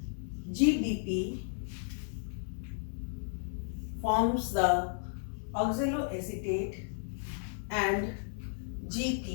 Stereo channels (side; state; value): right; silent; 55 dB below the other